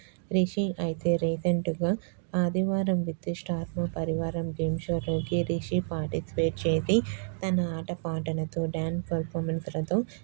రిషి అయితే రీసెంట్గా ఆదివారం విత్ స్టార్ మా పరివారం గేమ్ షోలోకి రిషి పార్టిసిపేట్ చేసి తన ఆటపాటలతో డ్యాన్స్ పర్ఫార్మెన్స్లతో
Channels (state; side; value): silent; left; digital silence